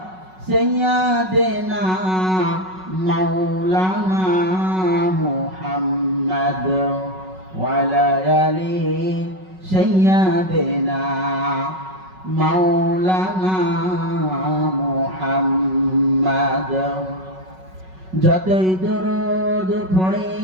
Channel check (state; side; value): late; left; 5.4 ms